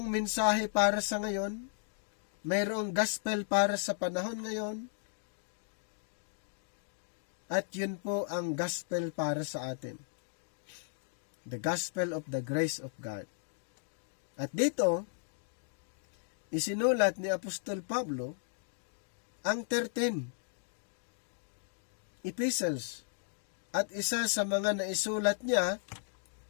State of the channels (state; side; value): silent; right; digital silence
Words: mensahe para sa ngayon, mayroong gospel para sa panahon ngayon, at yun po ang gospel para sa atin. The gospel of the grace of God. At dito, isinulat ni Apostol Pablo ang 13 epistles. At isa sa mga naisulat niya